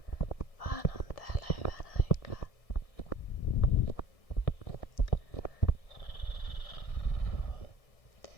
Vaan on täällä hyvän aikaa.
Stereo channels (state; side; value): late; right; 1.6 ms